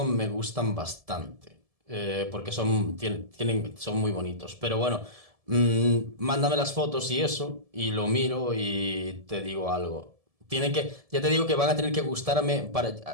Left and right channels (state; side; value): late; left; 1.7 ms